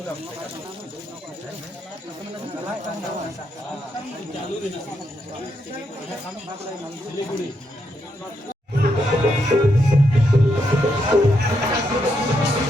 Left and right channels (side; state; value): both; normal; correlation 0.80